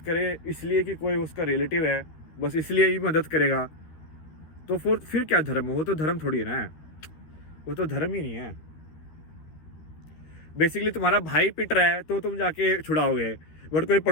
करे इसलिए कि कोई उसका रिलेटिव है, बस इसलिए ही मदद करेगा, तो फिर क्या धर्म है? वो तो धर्म थोड़ी है ना, वो तो धर्म ही नहीं है। बेसिकली तुम्हारा भाई पिट रहा है तो तुम जाके छुड़ाओगे, बट कोई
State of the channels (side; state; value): right; late; 13 ms